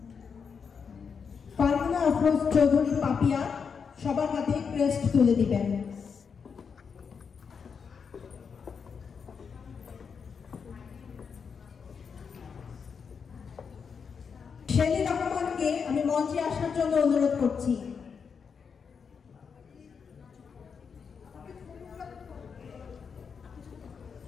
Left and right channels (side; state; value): right; quieter; 6.1 dB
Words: ফারহানা আফরোজ চৌধুরী পাপিয়া সবার হাতে ক্রেস্ট তুলে দিবেন। শেলি রহমানকে আমি মঞ্চে আসার জন্য অনুরোধ করছি।